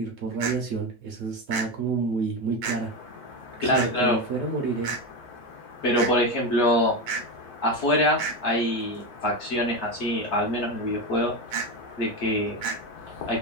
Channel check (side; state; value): both; normal; correlation 0.16